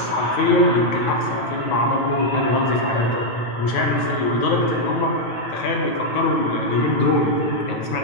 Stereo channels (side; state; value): right; late; 9.3 ms